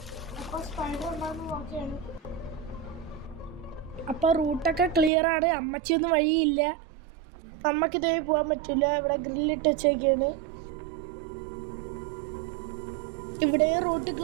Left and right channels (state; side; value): drops out; left; at 5.1 s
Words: അപ്പോൾ സ്പൈഡർ ഉണ്ടാകുന്ന നോക്കിയാണ്. അപ്പോൾ റൂട്ടൊക്കെ ക്ലിയർ ആണ്. അമ്മച്ചിയൊന്നും വഴിയില്ല. നമുക്കിതേ പോകാൻ പറ്റില്ല. ഇവിടെ ഗ്രില്ലിട്ട് വെച്ചേക്കാണ്. ഇവിടെ റൂട്ട്